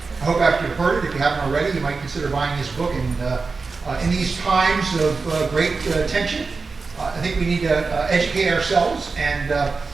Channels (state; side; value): quieter; left; 4.3 dB